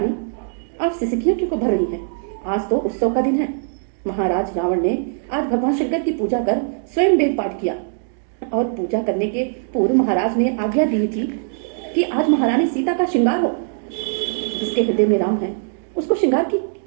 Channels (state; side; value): silent; left; digital silence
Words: आप सिसकियां क्यों भर रही हैं? आज तो उत्सव का दिन है। महाराज रावण ने आज भगवान शंकर की पूजा कर स्वयं वेद पाठ किया और पूजा करने के पूर्व महाराज ने आज्ञा दी थी कि आज महारानी सीता का श्रृंगार हो। जिसके हृदय में राम है उसको श्रृंगार की